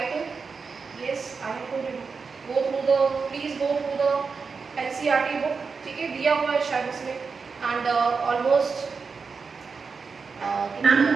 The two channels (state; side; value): quieter; left; 5.1 dB